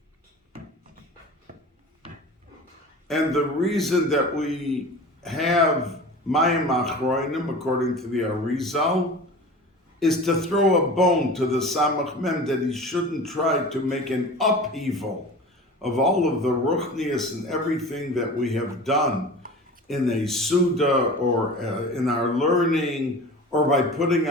the reason that we have Mayim Achroinim, according to the Arizal, is to throw a bone to the Samach Mem that he shouldn't try to make an upheaval of all of the Ruchnius and everything that we have done in a Suda or in our learning, or by putting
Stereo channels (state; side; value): normal; both; correlation 0.36